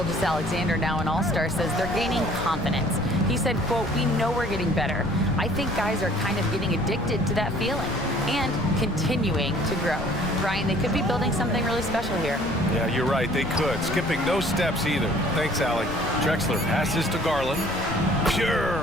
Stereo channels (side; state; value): left; noise; rumble, 11 dB below the sound